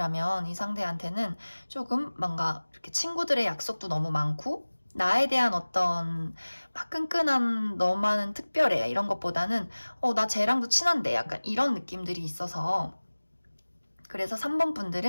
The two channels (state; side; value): inverted; both; correlation -1.00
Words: 이 상대한테는 조금 뭔가 이렇게 친구들의 약속도 너무 많고 나에 대한 어떤 막 끈끈한 너만은 특별해 이런 것보다는 나 쟤랑도 친한데 약간 이런 느낌들이 있어서, 그래서 3번